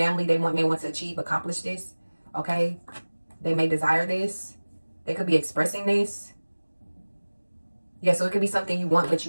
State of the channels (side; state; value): both; inverted; correlation -1.00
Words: They may want to achieve, accomplish this. Okay, they may desire this. They could be expressing this. Yeah, so it could be something you want, but